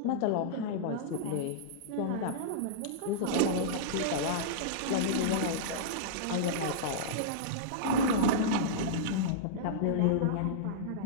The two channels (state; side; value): different; both; correlation -0.03